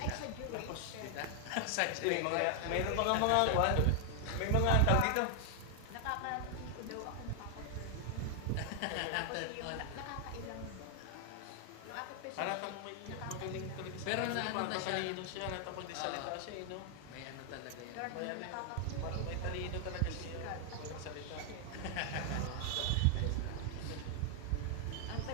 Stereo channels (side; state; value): both; different; correlation 0.00